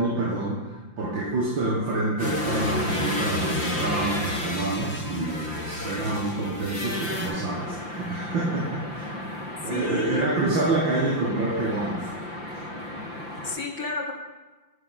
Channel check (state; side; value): late; left; 5.8 ms